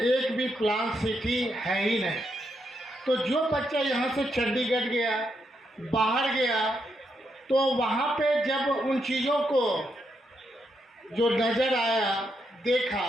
भी प्लान सिटी है ही नहीं। तो जो बच्चा यहाँ से चंडीगढ़ गया, बाहर गया, तो वहाँ पे जब उन चीज़ों को जो नज़र आया,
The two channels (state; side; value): normal; both; correlation 0.80